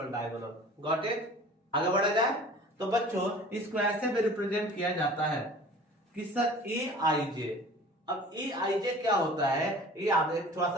डायगोनल। Got it. आगे बढ़ा जाए तो बच्चों इसको ऐसे भी रिप्रेजेंट किया जाता है कि सर ए आई जे। अब ए आई जे क्या होता है, ये आगे थोड़ा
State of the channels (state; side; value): normal; both; correlation 0.44